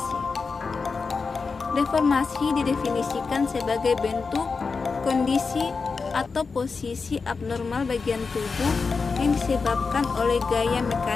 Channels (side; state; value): right; quieter; 4.7 dB